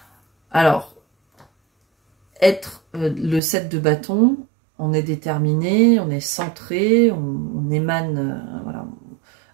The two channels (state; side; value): drops out; left; at 3.4 s